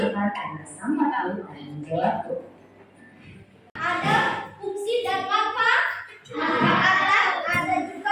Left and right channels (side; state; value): both; identical; correlation 1.00